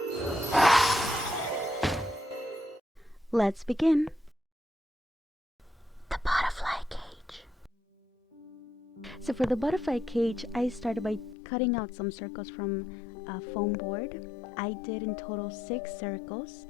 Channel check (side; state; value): right; drops out; at 11.4 s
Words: Let's begin. The butterfly cage. So for the butterfly cage, I started by cutting out some circles from a foam board. I did in total 6 circles,